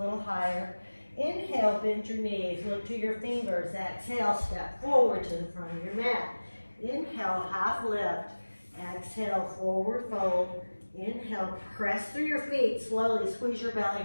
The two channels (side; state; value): both; inverted; correlation -1.00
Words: higher. Inhale, bend your knees. Look to your fingers. Exhale, step forward to the front of your mat. Inhale, half lift. Exhale, forward fold. Inhale, press through your feet. Slowly squeeze your